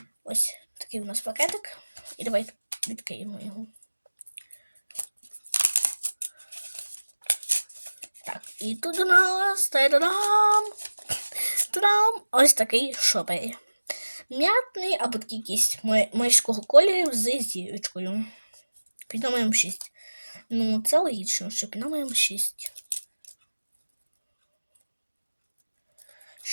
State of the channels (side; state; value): both; inverted; correlation -1.00